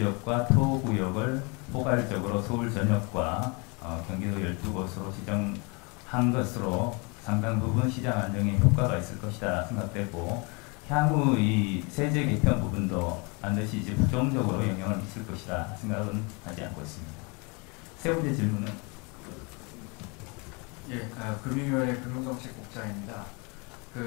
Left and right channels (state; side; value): quieter; right; 30.4 dB